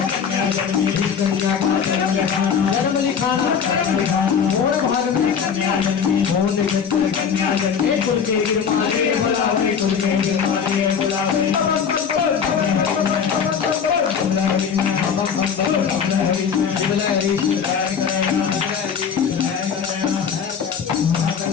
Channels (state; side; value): quieter; right; 7.0 dB